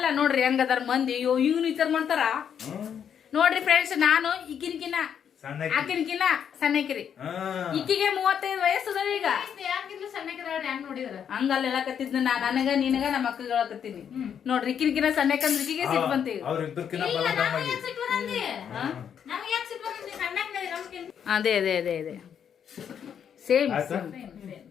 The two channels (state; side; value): quieter; right; 8.2 dB